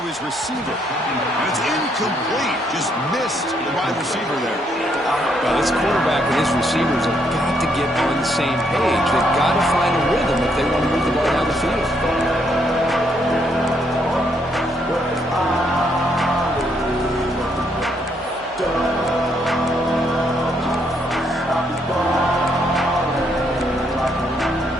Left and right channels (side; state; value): both; normal; correlation 0.73